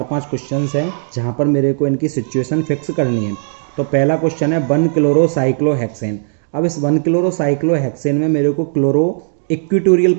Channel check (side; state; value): left; silent; digital silence